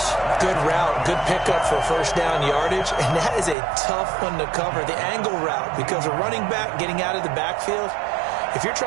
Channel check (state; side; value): drops out; left; at 3.6 s